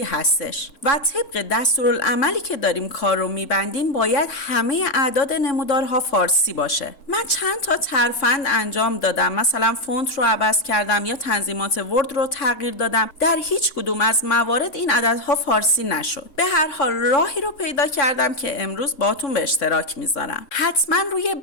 هستش و طبق دستورالعملی که داریم کار رو میبندیم باید همه اعداد نمودارها فارسی باشه. من چند تا ترفند انجام دادم، مثلا فونت رو عوض کردم یا تنظیمات ورد رو تغییر دادم، در هیچ کدوم از موارد این عددها فارسی نشد. به هر حال راهی رو پیدا کردم که امروز باهاتون به اشتراک میذارم. حتما روی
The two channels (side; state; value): right; late; 3.6 ms